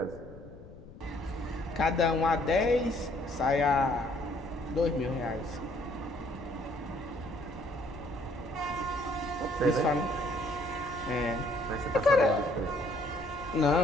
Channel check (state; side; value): noise; left; rumble, 18 dB below the sound